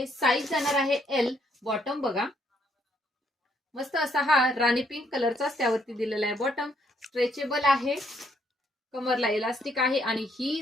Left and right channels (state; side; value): normal; both; correlation 0.70